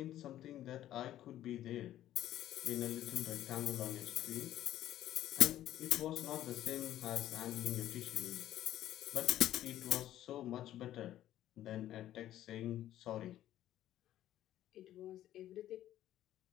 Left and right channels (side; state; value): right; quieter; 12.9 dB